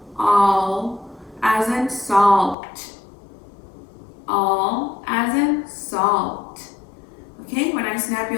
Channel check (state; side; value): drops out; right; at 2.6 s